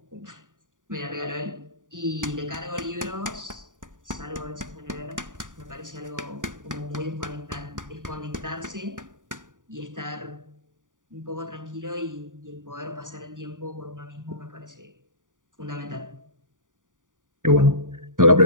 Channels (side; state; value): left; late; 0.88 ms